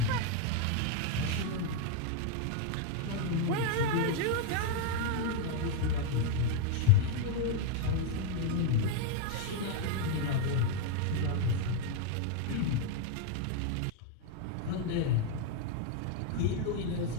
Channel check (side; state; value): both; different; correlation 0.01